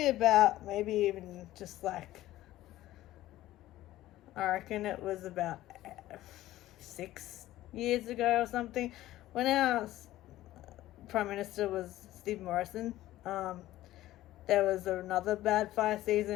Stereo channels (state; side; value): quieter; right; 15.2 dB